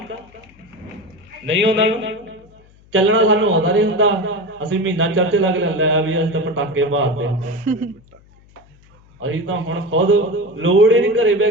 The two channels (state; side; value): noise; left; hum, 28 dB below the sound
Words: ਨਹੀਂ ਆਉਂਦਾ। ਚੱਲਣਾ ਸਾਨੂੰ ਆਉਂਦਾ ਨਹੀਂ ਹੁੰਦਾ। ਅਸੀਂ ਮਹੀਨਾ ਚਰਚ ਲੱਗ ਲੈਂਦਾ ਵੀ ਅਸੀਂ ਤਾਂ ਪਟਾਕੇ ਮਾਰਦੇ, ਅਸੀਂ ਤਾਂ ਹੁਣ ਖੁਦ ਲੋੜ ਹੀ ਨਹੀਂ, ਘਰੇ ਬਹਿ